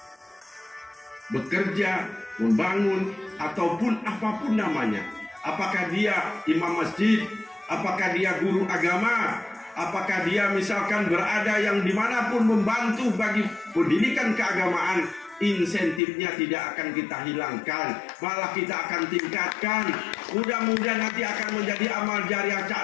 bekerja, membangun, ataupun apapun namanya. Apakah dia imam masjid, apakah dia guru agama, apakah dia misalkan berada yang dimanapun membantu bagi pendidikan keagamaan, insentifnya tidak akan kita hilangkan, malah kita akan tingkatkan. Mudah-mudahan nanti akan menjadi amal jariah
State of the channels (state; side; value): drops out; right; at 16.0 s